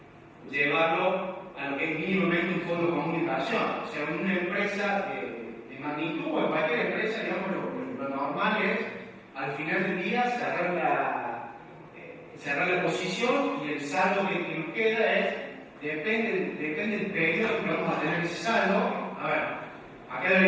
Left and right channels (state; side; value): identical; both; correlation 1.00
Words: llevarlo a lo que es mínimamente un fondo común de inversión. O sea, una empresa de magnitud o en cualquier empresa, digamos, lo normal es al final del día cerrar la posición y el saldo que nos queda depende del periodo que vamos a tener ese saldo. A ver, acá